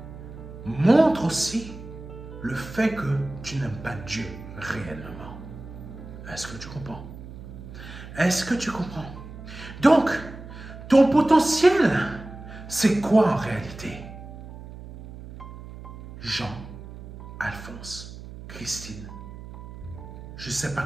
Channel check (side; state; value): right; noise; hum, 14 dB below the sound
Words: montrent aussi le fait que tu n'aimes pas Dieu réellement. Est-ce que tu comprends? Est-ce que tu comprends? Donc, ton potentiel, c'est quoi en réalité? Jean, Alphonse, Christine, je ne sais pas